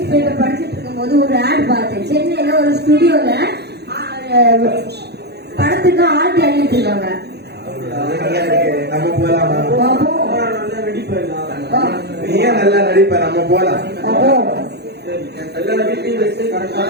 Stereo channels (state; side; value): late; left; 0.48 ms